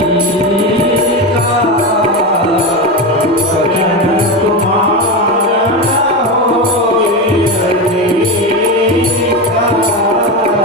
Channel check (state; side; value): normal; both; correlation 0.17